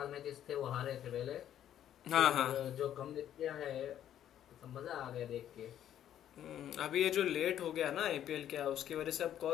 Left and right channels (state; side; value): quieter; right; 10.9 dB